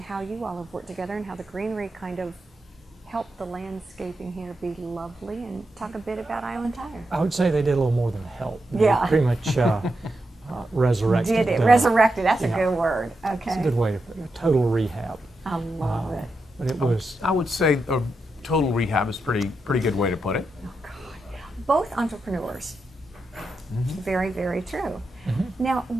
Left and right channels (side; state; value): both; normal; correlation 0.86